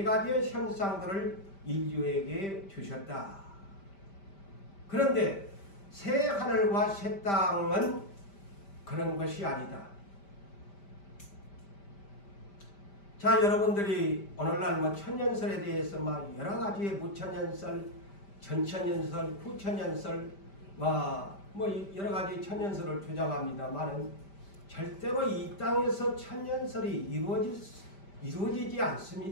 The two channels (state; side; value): late; right; 5.1 ms